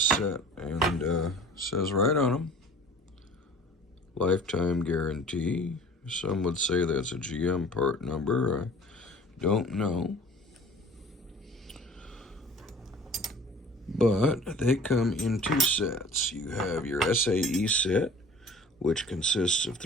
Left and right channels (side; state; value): both; normal; correlation 0.46